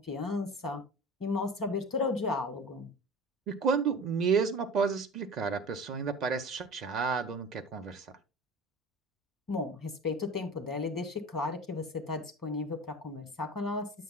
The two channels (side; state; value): both; normal; correlation 0.36